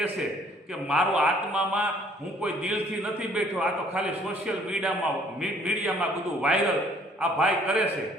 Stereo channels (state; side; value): normal; both; correlation 0.60